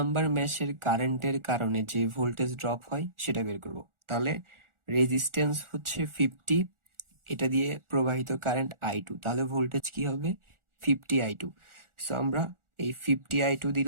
ম্যাশের কারেন্টের কারণে যে ভোল্টেজ ড্রপ হয় সেটা বের করব। তাহলে রেজিস্ট্যান্স হচ্ছে 50, এটা দিয়ে প্রবাহিত কারেন্ট I2, তাহলে ভোল্টেজ কি হবে? 50I2। সো আমরা এই 50I2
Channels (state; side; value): late; left; 1.4 ms